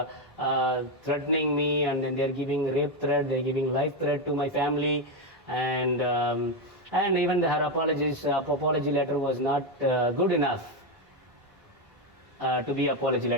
threatening me, and then they're giving rape threat, they're giving life threat to my family, and even her apology letter was not good enough to be apology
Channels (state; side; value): normal; both; correlation 0.07